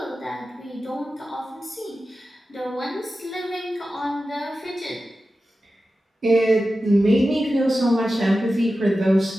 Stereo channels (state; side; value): normal; both; correlation 0.93